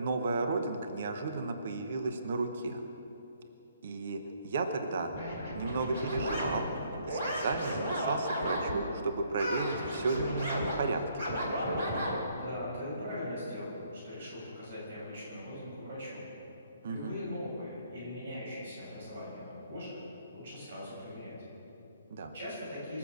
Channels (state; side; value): inverted; both; correlation -0.67